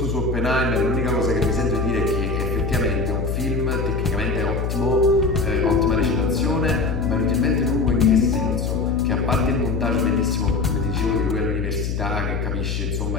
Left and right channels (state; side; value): noise; left; hum, 1 dB below the sound